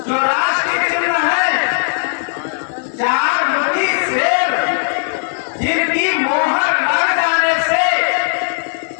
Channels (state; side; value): silent; right; digital silence